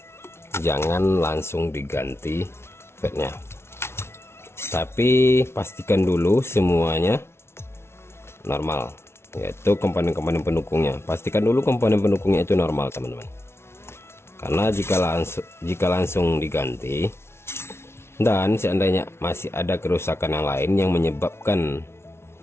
jangan langsung diganti fatnya, tapi pastikan dulu semuanya normal, yaitu komponen-komponen pendukungnya. Pastikan dulu komponen pendukungnya itu normal teman-teman, karena jika langsung diganti dan seandainya masih ada kerusakan yang lain yang menyebabkan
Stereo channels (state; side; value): late; right; 0.12 ms